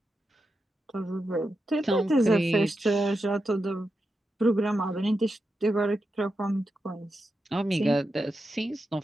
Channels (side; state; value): both; normal; correlation 0.88